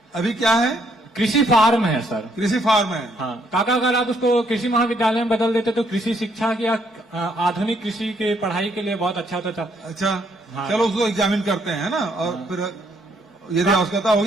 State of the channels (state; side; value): normal; both; correlation 0.70